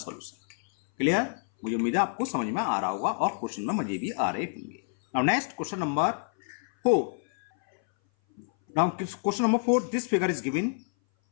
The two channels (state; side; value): silent; right; 58 dB below the other